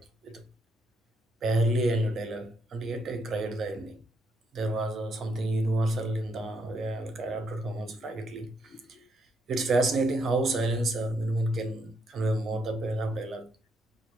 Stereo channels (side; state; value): both; normal; correlation 0.76